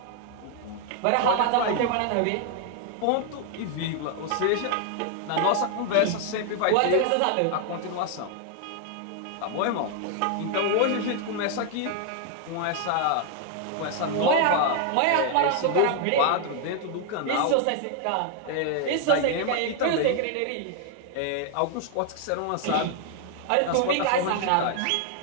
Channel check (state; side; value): different; both; correlation 0.00